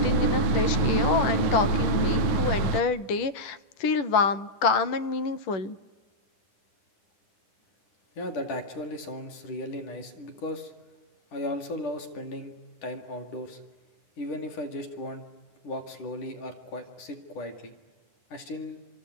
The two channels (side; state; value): right; late; 10 ms